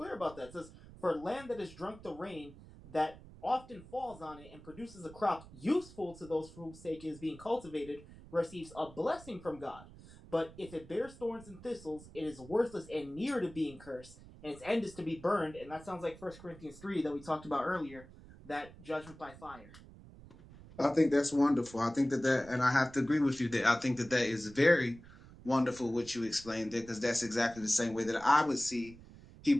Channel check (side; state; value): right; noise; rumble, 19 dB below the sound